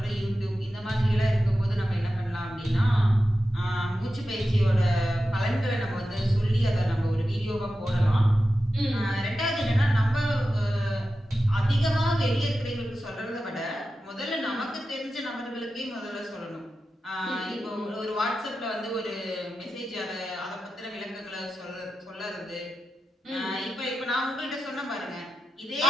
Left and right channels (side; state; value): both; normal; correlation 0.92